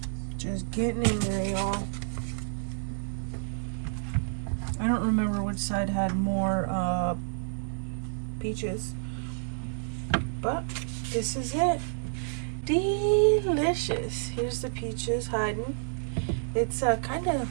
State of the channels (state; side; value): silent; left; digital silence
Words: Just getting in there, y'all. I don't remember which side had more peaches, but this is it. Delicious. Here's the peaches hiding. It's kind of